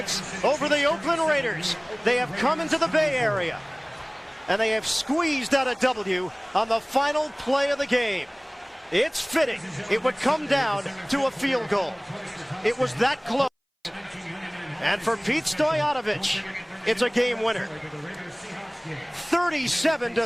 over the Oakland Raiders. They have come into the Bay Area, and they have squeezed out a W on the final play of the game. It's fitting. It would come down to a field goal. It was that close. And for Pete Stoyanovich, it's a game winner.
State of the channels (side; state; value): both; identical; correlation 1.00